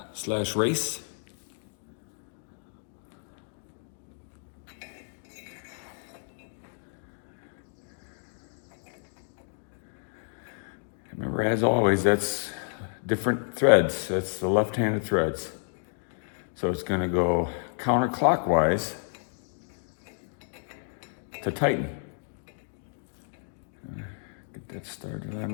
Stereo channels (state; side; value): silent; right; 58 dB below the other